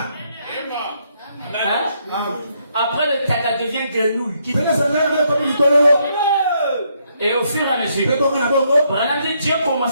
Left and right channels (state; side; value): inverted; both; correlation -0.74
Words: Après le téta devient grenouille. Et au fur et à mesure, Dieu a